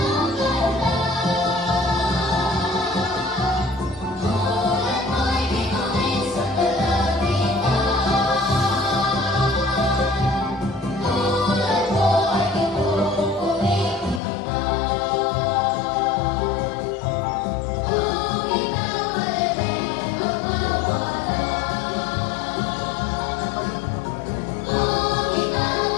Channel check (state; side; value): drops out; right; at 14.2 s